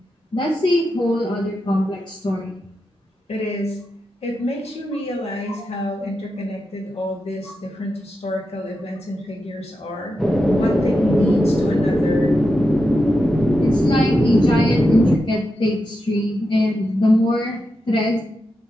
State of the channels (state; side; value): normal; both; correlation 0.88